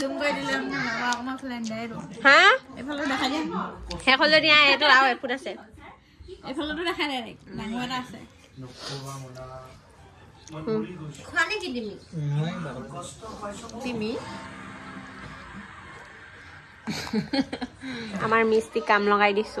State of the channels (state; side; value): identical; both; correlation 1.00